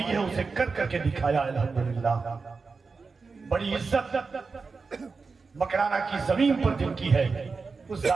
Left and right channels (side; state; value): left; quieter; 4.5 dB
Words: है उसे कर करके दिखाया। अल्हम्दुलिल्लाह बड़ी इज्जत मकराना की जमीन पर जिनकी है उस